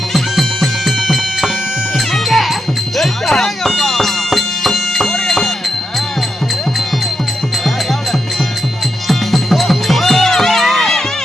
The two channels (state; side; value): normal; both; correlation 0.85